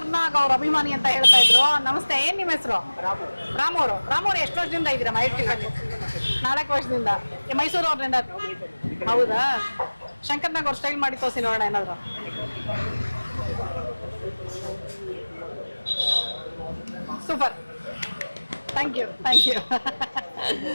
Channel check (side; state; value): both; inverted; correlation -1.00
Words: ಅವ್ರ ಅಭಿಮಾನಿ ಅಂತ ಹೇಳ್ತಾ ಇದ್ರು. ನಮಸ್ತೆ, ಏನ್ ನಿಮ್ಮ ಹೆಸರು? ರಾಮು ಎಷ್ಟು ವರ್ಷದಿಂದ ಇದ್ದೀರಾ ಮಹೇಶ್ ಟಿಫನ್? 4 ವರ್ಷದಿಂದ. ಮೈಸೂರು ಅವ್ರಿಂದ? ಹೌದಾ? ಶಂಕರ್ನಾಗ್ ಅವ್ರ ಸ್ಟೈಲ್ ಮಾಡಿ ತೋರಿಸಿ ನೋಡೋಣ ಏನಾದ್ರು. Super, thank you.